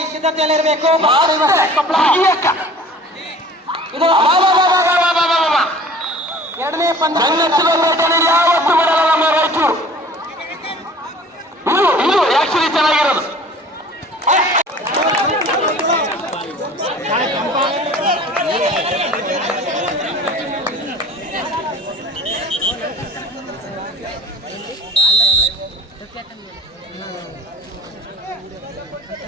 ಸಿದ್ಧತೆಯಲ್ಲಿರಬೇಕು. ಬಳ್ಳಾರಿ ವರ್ಸಸ್ ಕೊಪ್ಪಳ. ಇದು ಎರಡನೇ ಪಂದ್ಯ. ಯಾವತ್ತು ಬಿಡಲ್ಲ ನಮ್ಮ ರಾಯಚೂರು. ಇದು ಆಕ್ಚುಲಿ ಚೆನ್ನಾಗಿರೋದು.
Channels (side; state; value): both; normal; correlation 0.47